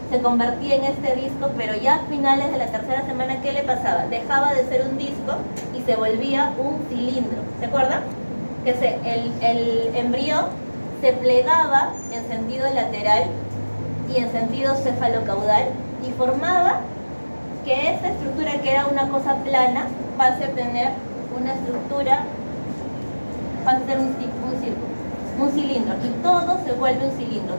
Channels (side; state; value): both; inverted; correlation -1.00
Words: se convertía en este disco, pero ya a finales de la 3ª semana, ¿qué le pasaba? Dejaba de ser un disco y se volvía un cilindro. ¿Se acuerdan? Que el embrión se plegaba en sentido lateral y en sentido cefalocaudal y formaba que esta estructura, que era una cosa plana, pase a tener una estructura, pasa a ser un círculo, un cilindro, y todo se vuelve un cilindro,